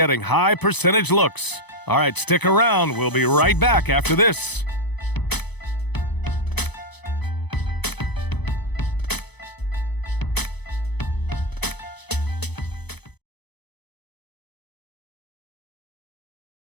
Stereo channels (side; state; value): right; late; 0.99 ms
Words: high percentage looks. All right, stick around. We'll be right back after this.